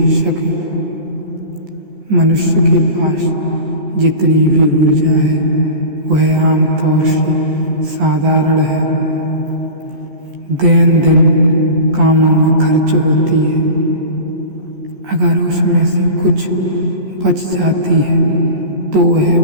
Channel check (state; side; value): late; left; 14 ms